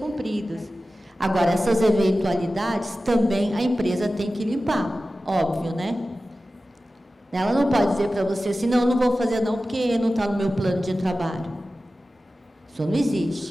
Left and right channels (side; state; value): both; normal; correlation 0.95